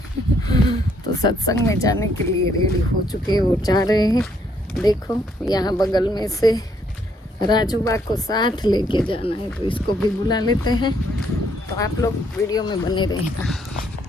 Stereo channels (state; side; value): normal; both; correlation 0.70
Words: तो सत्संग में जाने के लिए रेडी हो चुके हैं और जा रहे हैं। देखो यहाँ बगल में से राजूबा को साथ लेके जाना है, तो इसको भी बुला लेते हैं। तो आप लोग वीडियो में बने रहना।